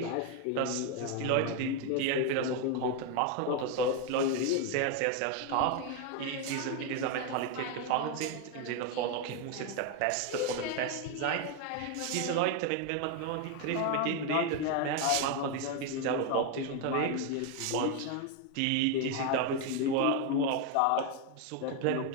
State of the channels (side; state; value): both; different; correlation 0.01